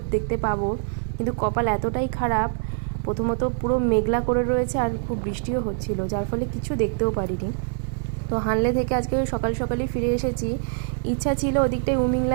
দেখতে পাবো, কিন্তু কপাল এতটাই খারাপ। প্রথমত পুরো মেঘলা করে রয়েছে আর খুব বৃষ্টিও হচ্ছিল, যার ফলে কিছু দেখতেও পারিনি। তো হানলে থেকে আজকে সকাল সকালই ফিরে এসেছি। ইচ্ছা ছিল ওদিকটায়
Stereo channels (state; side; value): silent; left; digital silence